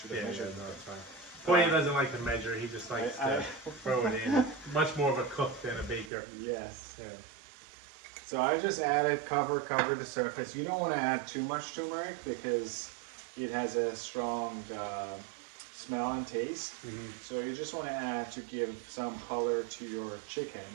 have measured. No, it's fine. Poya doesn't like to measure. He just likes to throw it in. Much more of a cook than a baker. Yes. Yeah. So I just added cover the surface. You don't want to add too much turmeric because it has a strong smell and taste. So you just want to add to give some color to your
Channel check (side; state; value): left; drops out; at 6.1 s